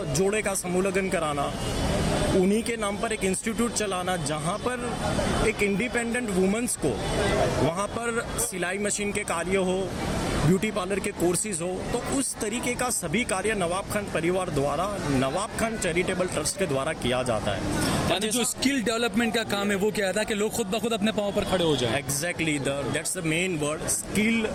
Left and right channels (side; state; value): both; identical; correlation 1.00